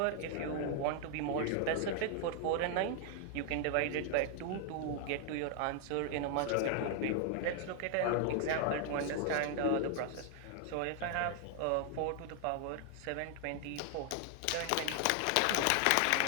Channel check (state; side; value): different; both; correlation 0.00